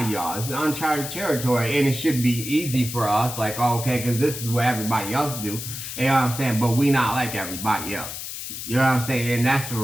of y'all, it's uncharted territory, and it should be easy for us. Like, okay, because this is what everybody else do. You know what I'm saying? But we not like everybody else. You know what I'm saying? And that's for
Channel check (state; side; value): noise; left; hiss, 8 dB below the sound